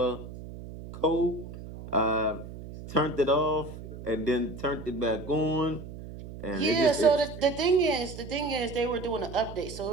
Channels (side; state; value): right; noise; hum, 12 dB below the sound